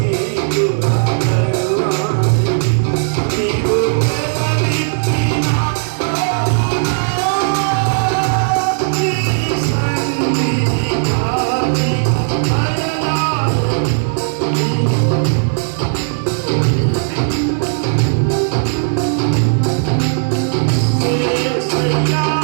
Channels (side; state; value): left; silent; 60 dB below the other